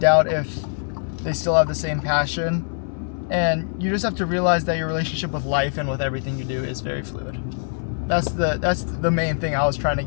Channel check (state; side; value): silent; right; 63 dB below the other